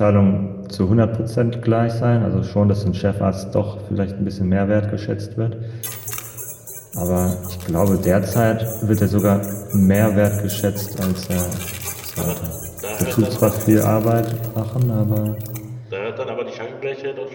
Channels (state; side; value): identical; both; correlation 1.00